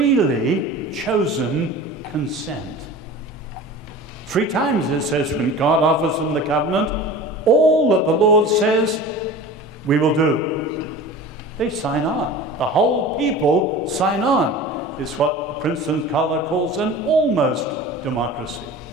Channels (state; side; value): normal; both; correlation 0.37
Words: chosen consent. 3 times it says when God offers them the covenant, all that the Lord says, we will do. They sign on. The whole people sign on. It's what Princeton Scholar calls an almost democracy.